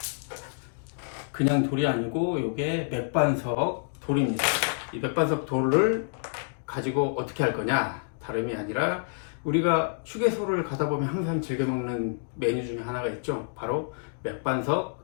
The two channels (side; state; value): right; silent; digital silence